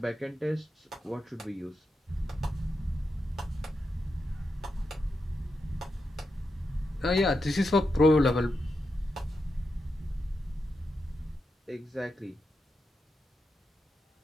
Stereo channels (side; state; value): both; normal; correlation 0.87